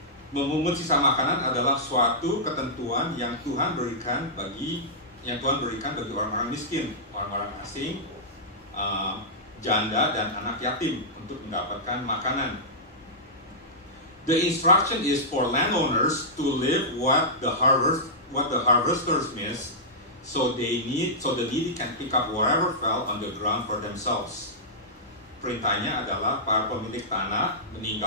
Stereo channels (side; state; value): both; normal; correlation -0.13